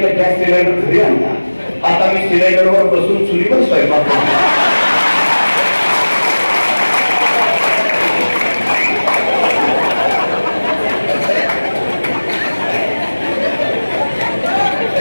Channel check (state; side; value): inverted; both; correlation -1.00